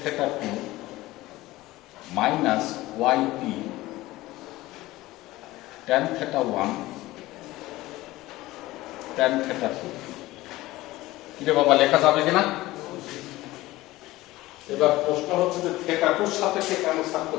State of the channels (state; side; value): quieter; right; 18.0 dB